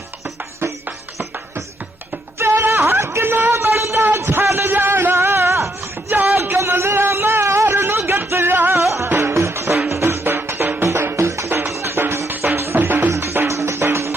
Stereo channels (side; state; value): both; normal; correlation 0.75